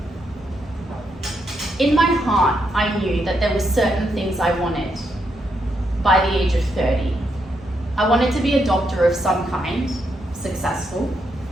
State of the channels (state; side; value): normal; both; correlation 0.79